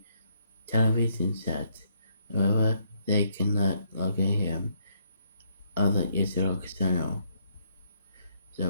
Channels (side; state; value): both; inverted; correlation -0.72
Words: television set. However, they cannot locate him on the Israel channel.